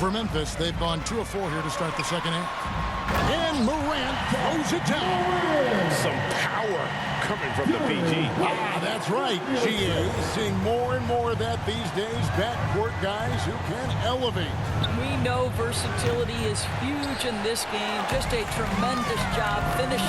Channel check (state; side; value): identical; both; correlation 1.00